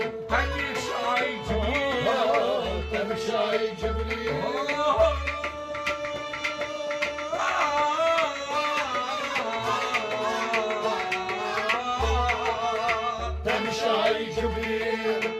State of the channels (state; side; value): identical; both; correlation 1.00